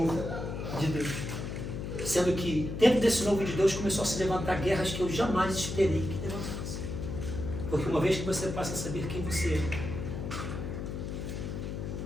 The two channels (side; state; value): left; noise; hum, 5 dB below the sound